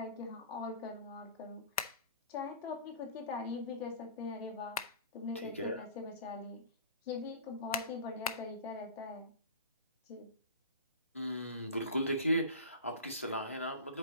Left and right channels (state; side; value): inverted; both; correlation -0.37